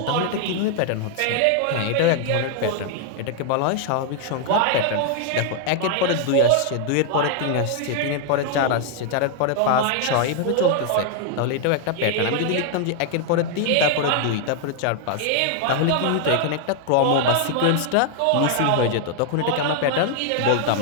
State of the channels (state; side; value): different; both; correlation 0.00